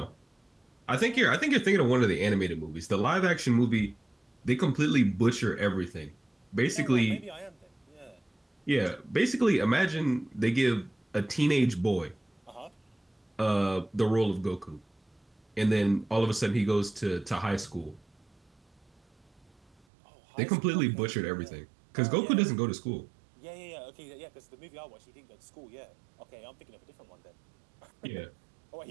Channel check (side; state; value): left; drops out; at 19.8 s